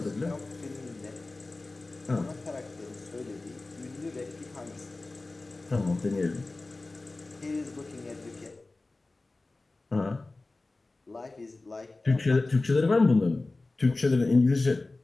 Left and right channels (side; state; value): right; quieter; 3.2 dB